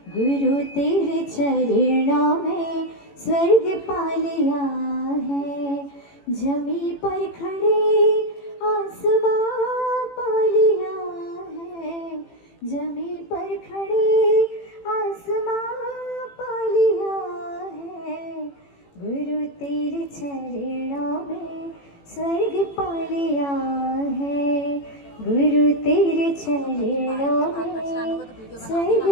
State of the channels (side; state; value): right; late; 18 ms